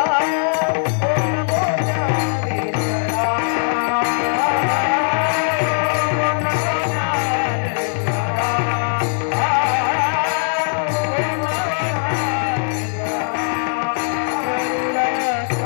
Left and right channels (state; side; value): silent; right; 66 dB below the other